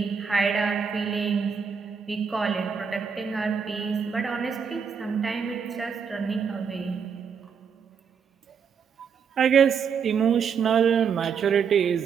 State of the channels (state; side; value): quieter; left; 6.6 dB